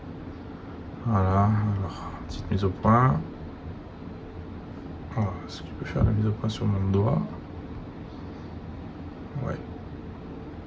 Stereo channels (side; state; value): both; identical; correlation 1.00